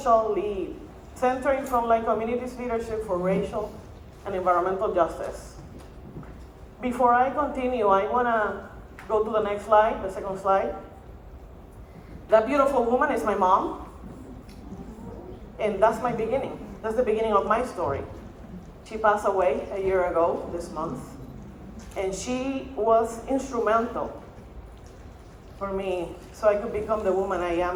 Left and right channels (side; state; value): both; identical; correlation 1.00